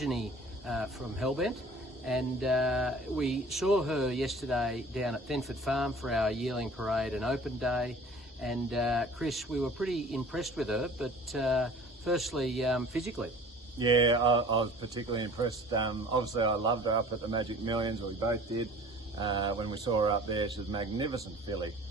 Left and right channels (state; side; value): normal; both; correlation 0.47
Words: from Hellebnt, and we saw her yesterday down at Thenford Farm for our yearling parade and open day, and Chris, we were pretty impressed with her, but firstly physically. Yeah, I was particularly impressed. Obviously I loved her up at the Magic Millions, or we both did. When we saw her up there, she was a magnificent filly.